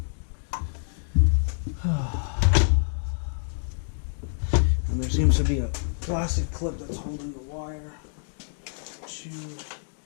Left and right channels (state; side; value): silent; right; digital silence